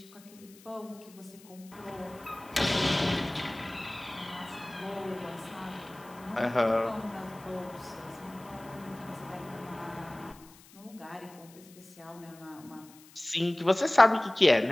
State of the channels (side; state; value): left; noise; hiss, 23 dB below the sound